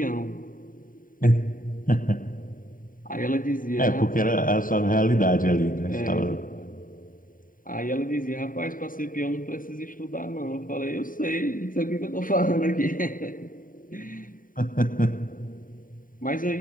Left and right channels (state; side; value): late; right; 0.40 ms